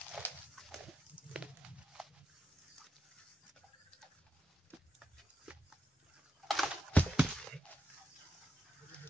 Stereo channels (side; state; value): both; normal; correlation 0.85